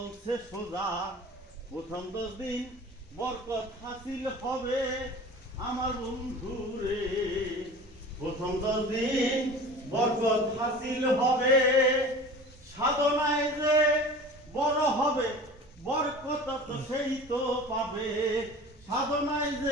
সোজা। প্রথম 10 দিন বরকত হাসিল হবে আমার বন্ধুরে। প্রথম 10 দিন বরকত হাসিল হবে। সাধনায় যে বড় হবে বরকত তো সেই তো পাবে। সাধনায়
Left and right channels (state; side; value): normal; both; correlation 0.39